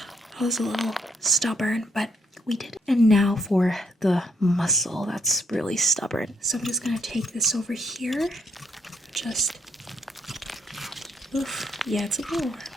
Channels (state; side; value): normal; both; correlation 0.72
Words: I was a little stubborn, but we did it. And now for the muscle that's really stubborn. So I'm just gonna take this over here. Just, oof, yeah, it's a little